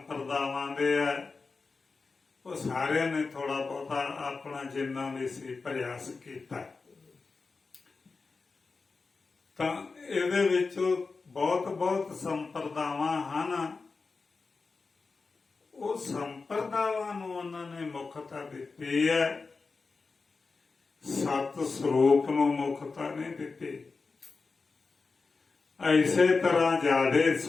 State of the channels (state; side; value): quieter; right; 4.3 dB